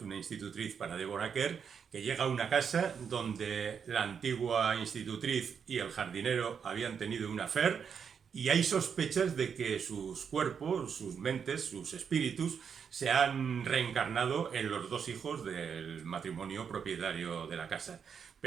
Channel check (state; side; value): quieter; left; 6.9 dB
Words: una institutriz para Deborah Kerr, que llega a una casa donde la antigua institutriz y el jardinero habían tenido un affair, y hay sospechas de que sus cuerpos, sus mentes, sus espíritus se han reencarnado en los dos hijos del matrimonio propietario de la casa.